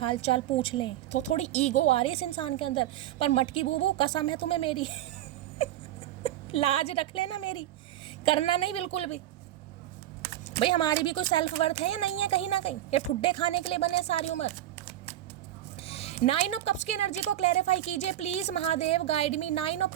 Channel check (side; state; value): left; quieter; 13.1 dB